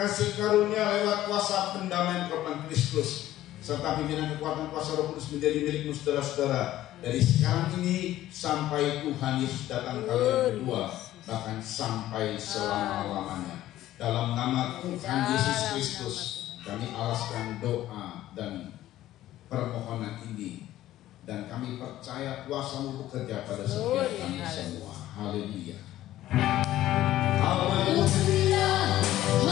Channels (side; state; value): right; quieter; 14.1 dB